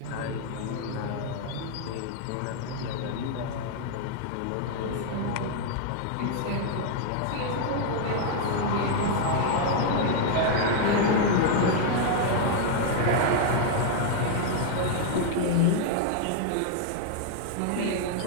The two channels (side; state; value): both; different; correlation 0.00